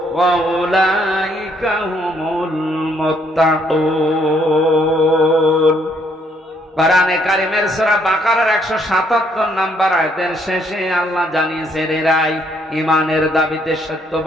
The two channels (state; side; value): normal; both; correlation 0.69